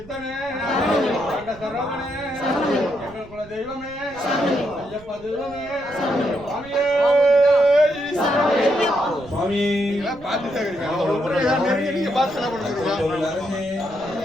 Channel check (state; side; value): noise; right; rumble, 21 dB below the sound